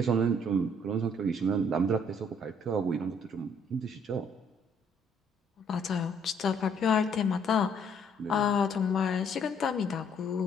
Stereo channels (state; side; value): normal; both; correlation 0.64